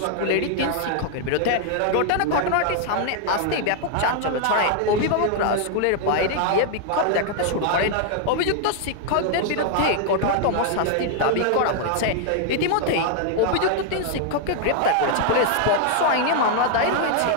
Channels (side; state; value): both; different; correlation 0.00